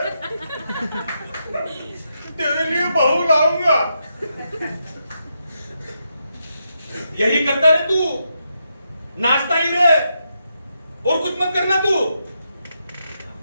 तेरे लिए बहू लाऊंगा। यही करता रहे तू, नाचता ही रहे और कुछ मत करना तू।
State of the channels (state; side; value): inverted; both; correlation -0.83